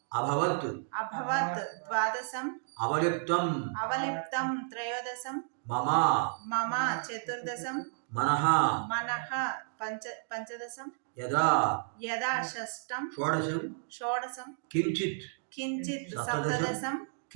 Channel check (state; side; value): silent; left; digital silence